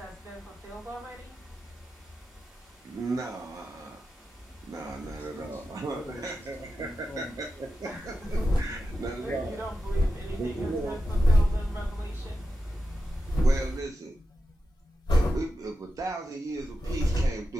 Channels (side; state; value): both; normal; correlation 0.90